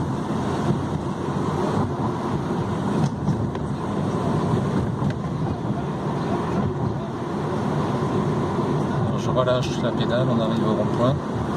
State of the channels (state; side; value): identical; both; correlation 1.00